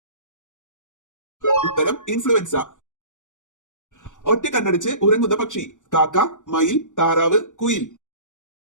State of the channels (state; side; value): late; right; 0.86 ms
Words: ഉത്തരം ഇൻഫ്ലുവൻസ. ഒറ്റ കണ്ണടച്ച് ഉറങ്ങുന്ന പക്ഷി: കാക്ക, മയിൽ, താറാവ്, കുയിൽ.